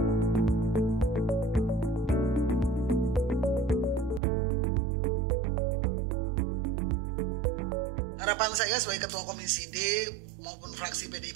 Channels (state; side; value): drops out; left; at 4.2 s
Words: Harapan saya sebagai Ketua Komisi D maupun fraksi PDI